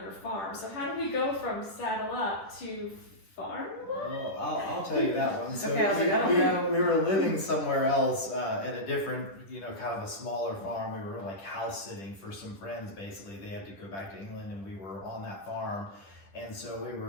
your farm. So how did we go from Saddle Up to farm? Well, I'll tell you that one. So Okay, I was like, I don't know. we were living somewhere else in a different, kind of a smaller farm. We were like house sitting for some friends. Basically, they had to go back to England, and we were on that farm. And so we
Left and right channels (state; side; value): late; right; 10 ms